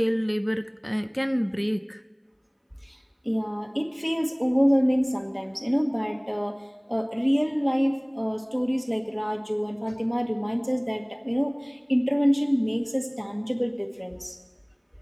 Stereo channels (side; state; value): both; identical; correlation 1.00